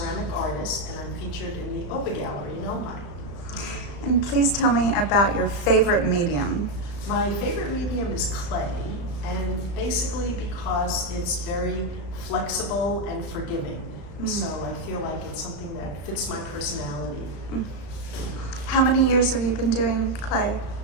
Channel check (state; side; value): late; right; 35 ms